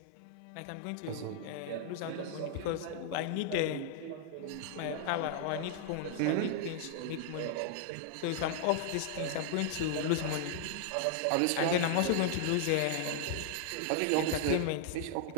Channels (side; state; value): both; different; correlation -0.01